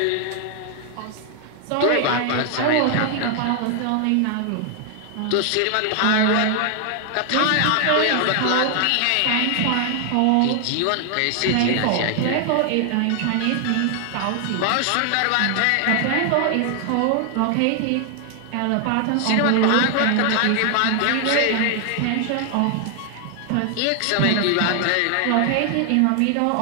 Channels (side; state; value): both; different; correlation 0.00